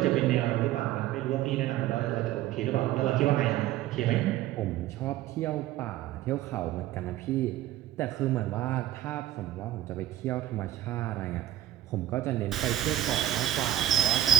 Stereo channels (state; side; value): quieter; left; 13.2 dB